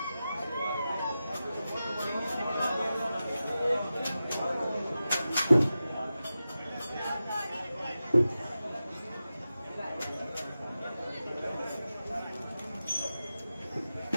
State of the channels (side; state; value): both; inverted; correlation -0.93